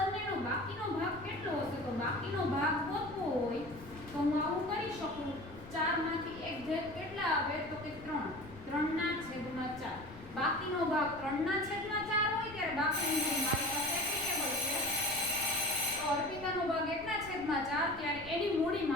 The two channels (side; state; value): left; noise; rumble, 17 dB below the sound